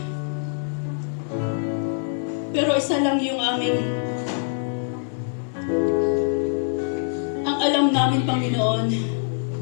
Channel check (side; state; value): right; silent; digital silence